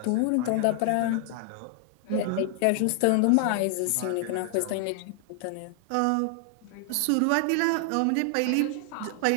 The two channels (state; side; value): different; both; correlation 0.00